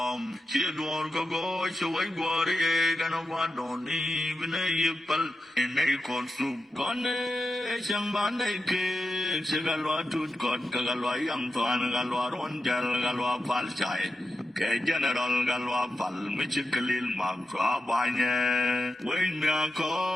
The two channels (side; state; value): both; normal; correlation 0.89